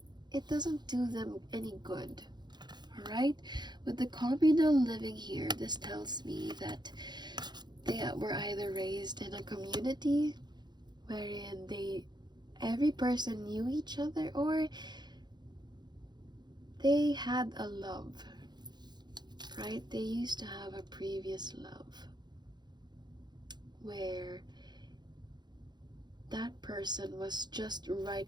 it doesn't do them any good. Alright? With the communal living here, this tells me that they were either raised in a community wherein every person knew each other, or they had a love, right? They used to have a previous love. where that person was just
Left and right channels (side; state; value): left; late; 0.21 ms